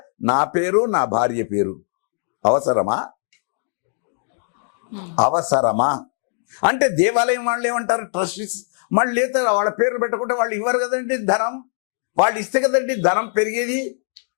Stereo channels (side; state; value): right; silent; 65 dB below the other